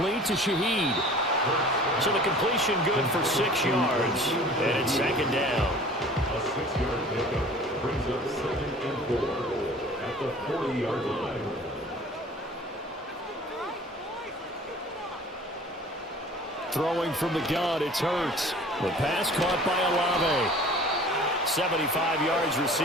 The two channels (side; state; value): both; normal; correlation 0.46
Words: to Shaheed. So the completion good for 6 yards. And it's 2nd down. A 6-yard pickup brings up 2nd and 4 at the 40-yard line. Throwing from the gun, it's Hurts. The pass caught by Olave. 75 yards